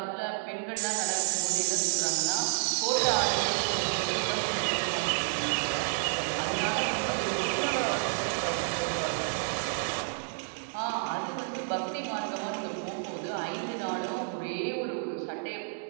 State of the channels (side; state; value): left; silent; digital silence